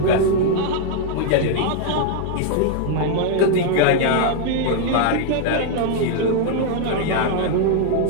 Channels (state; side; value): different; both; correlation 0.00